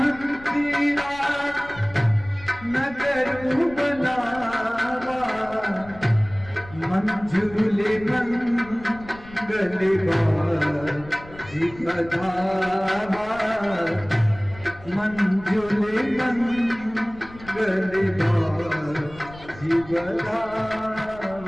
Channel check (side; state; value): left; noise; rumble, 19 dB below the sound